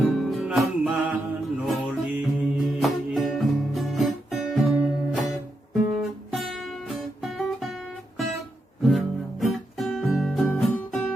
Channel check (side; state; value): both; normal; correlation 0.84